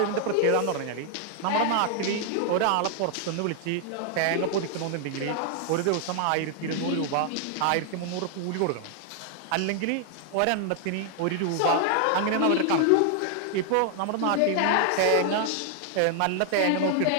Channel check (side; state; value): both; different; correlation 0.00